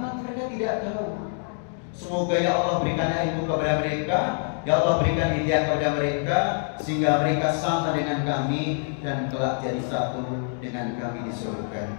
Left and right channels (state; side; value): silent; right; 61 dB below the other